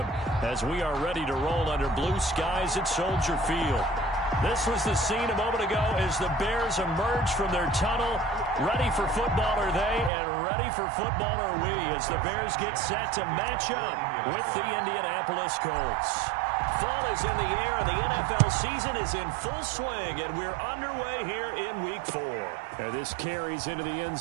as we are ready to roll under blue skies at Soldier Field. This was the scene a moment ago as the Bears emerge from their tunnel. Ready for football are they, and ready for football are we as the Bears get set to match up with the Indianapolis Colts. Fall is in the air, and the NFL season is in full swing, and we're underway here in Week 4. And this carries into the end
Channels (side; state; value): left; drops out; at 10.1 s